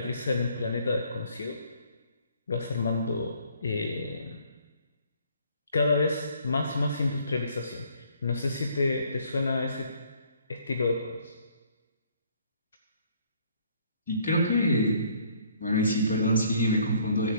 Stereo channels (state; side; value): inverted; both; correlation -0.62